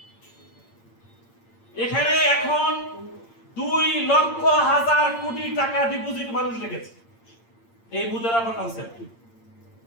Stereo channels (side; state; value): right; late; 8.7 ms